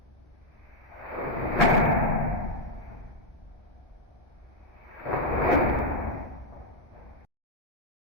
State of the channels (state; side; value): normal; both; correlation 0.00